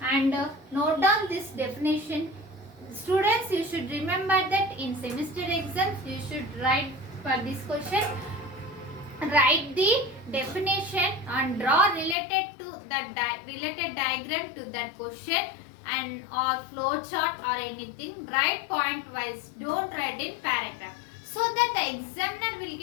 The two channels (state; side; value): drops out; right; at 12.2 s